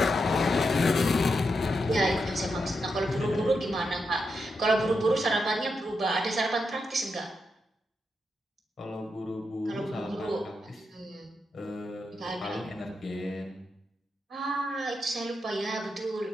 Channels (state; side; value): normal; both; correlation 0.85